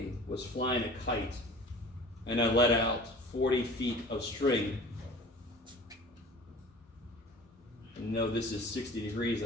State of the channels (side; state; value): both; normal; correlation 0.43